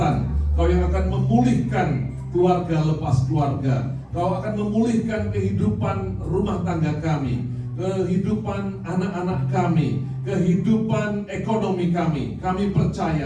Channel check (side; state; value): both; identical; correlation 1.00